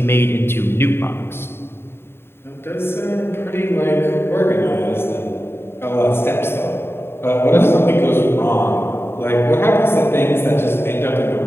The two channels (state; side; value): late; right; 0.11 ms